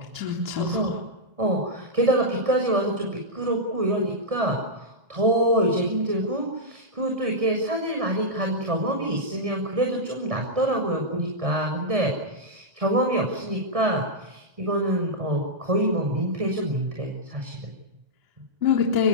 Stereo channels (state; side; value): late; left; 1.8 ms